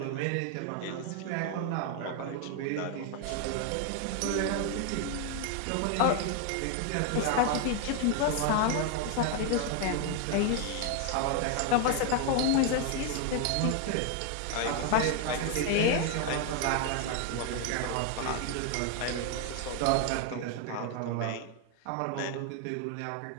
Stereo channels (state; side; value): different; both; correlation 0.00